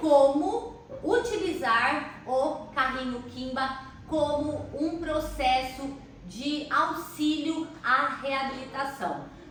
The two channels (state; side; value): identical; both; correlation 1.00